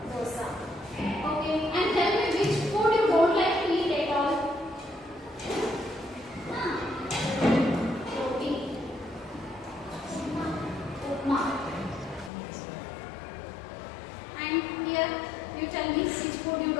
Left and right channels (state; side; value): drops out; right; at 12.3 s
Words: Dosa. Okay. And tell me which food you don't like to eat at all? Roti. Upma. And here, you tell me which food you